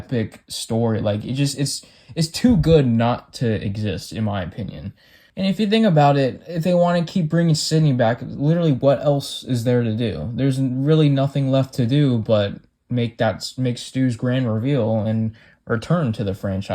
story. Like, it's too good not to exist, in my opinion. And if you think about it, if they want to keep bringing Sidney back, literally what else is there to do? There's really nothing left to do but make Stu's grand reveal and return to the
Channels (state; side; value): identical; both; correlation 1.00